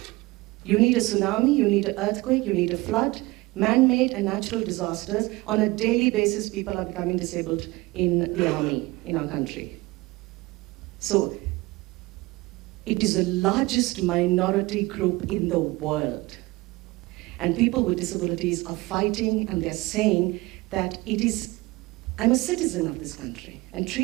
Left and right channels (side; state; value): left; quieter; 21.6 dB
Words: You need a tsunami, you need an earthquake, you need a flood, man-made and natural disasters. On a daily basis, people are becoming disabled in the army in our country. So it is the largest minority group in the world. And people with disabilities are fighting, and they're saying that I'm a citizen of this country, and